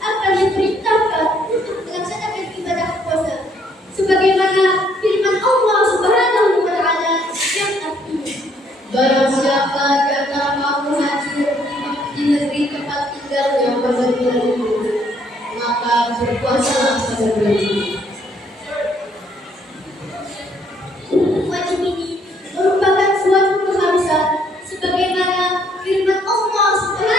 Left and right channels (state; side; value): normal; both; correlation 0.67